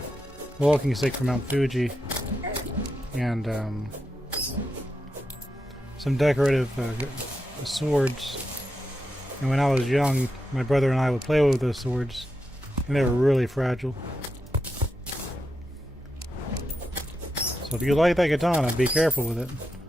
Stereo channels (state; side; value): normal; both; correlation 0.86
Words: walking stick from Mount Fuji, and some decorative swords. And when I was young, my brother and I would play with those swords, and they were really fragile. So if you like that katana, be careful with it.